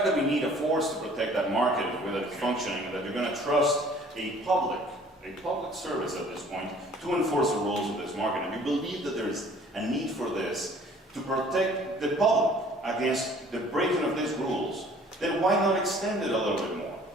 that we need a force to protect that market, whether it's functioning, and that you're going to trust a public service at this point to enforce the rules of this market, and you believe that there is a need for this to protect the public against the breaking of these rules, then why not extend it a little bit more?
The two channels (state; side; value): normal; both; correlation 0.53